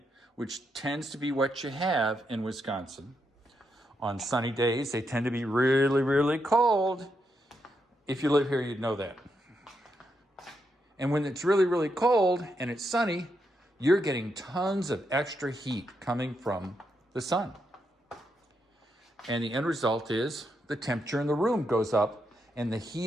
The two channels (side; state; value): both; normal; correlation 0.82